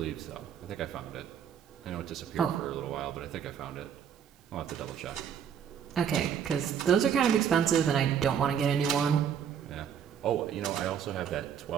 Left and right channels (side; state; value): left; quieter; 8.3 dB